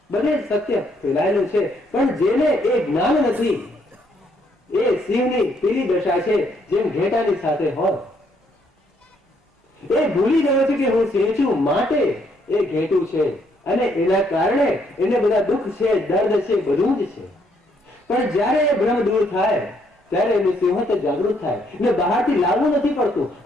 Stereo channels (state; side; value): normal; both; correlation 0.71